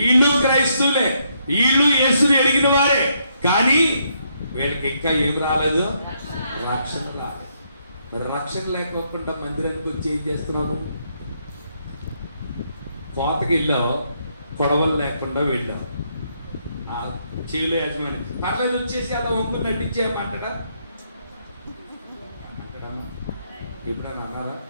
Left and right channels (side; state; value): both; inverted; correlation -0.75